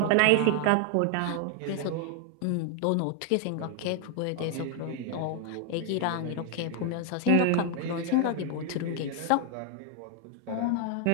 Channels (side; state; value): both; different; correlation 0.00